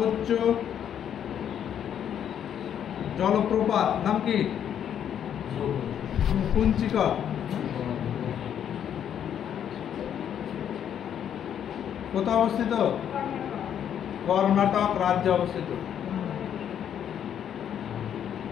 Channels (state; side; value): quieter; right; 9.3 dB